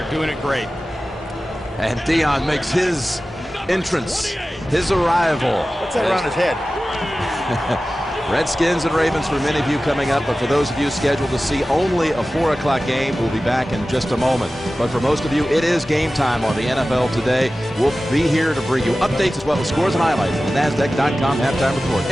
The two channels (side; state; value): both; normal; correlation 0.95